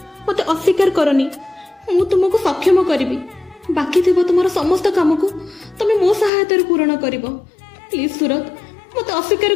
मते अस्वीकार करनी मु तुमको सक्षम करिवि बाकी थिबो तुमर समस्त काम को तमे मो सहायता रे पूर्ण करिवो। प्लीज सूरज मते अस्वीकार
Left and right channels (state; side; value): drops out; right; at 6.3 s